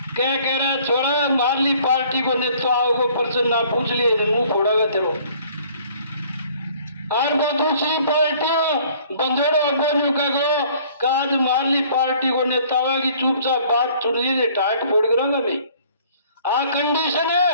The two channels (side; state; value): both; inverted; correlation -0.56